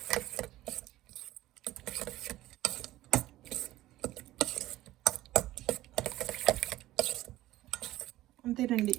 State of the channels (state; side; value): quieter; left; 15.8 dB